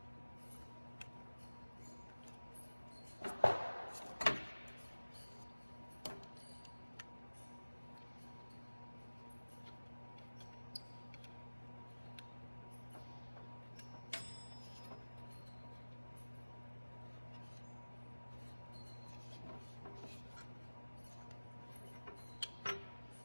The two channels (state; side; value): inverted; both; correlation -1.00